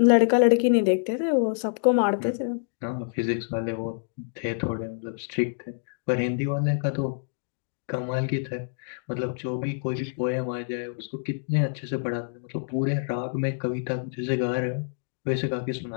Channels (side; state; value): right; silent; digital silence